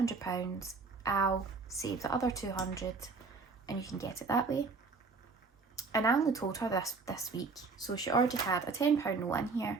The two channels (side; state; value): left; quieter; 4.3 dB